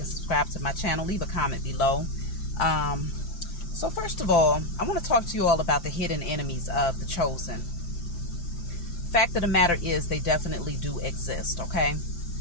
subscribe to my channel. Leave a comment below. So first of all, I want to talk to you all about the hidden enemies of the Chosen. Fact of the matter is, they definitely do exist, okay?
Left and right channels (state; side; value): late; right; 5.8 ms